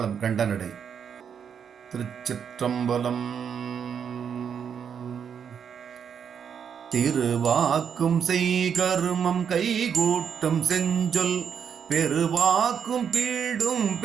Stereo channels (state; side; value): quieter; left; 7.5 dB